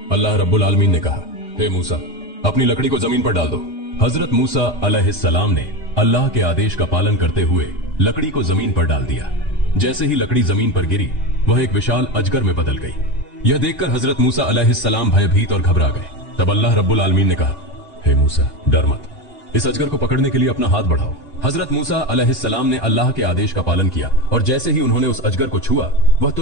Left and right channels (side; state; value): both; normal; correlation 0.18